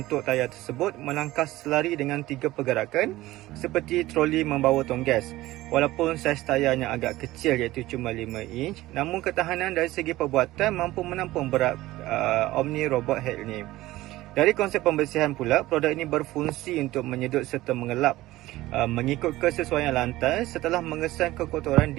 tayar tersebut melangkah selari dengan 3 pergerakan seperti troli membawa tong gas. Walaupun saiz tayarnya agak kecil iaitu cuma 5 inch, namun ketahanan dari segi perbuatan mampu menampung berat Omni Robot Head ini. Dari konsep pembersihan pula, produk ini berfungsi untuk menyedut serta mengelap mengikut kesesuaian lantai setelah mengesan kekotoran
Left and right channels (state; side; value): quieter; left; 17.2 dB